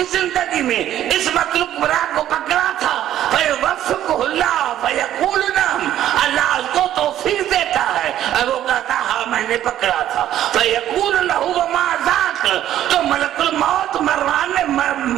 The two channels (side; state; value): left; quieter; 12.0 dB